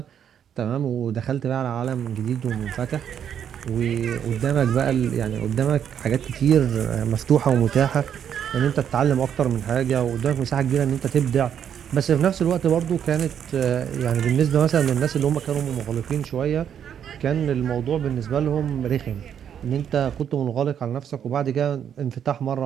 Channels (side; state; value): left; quieter; 8.8 dB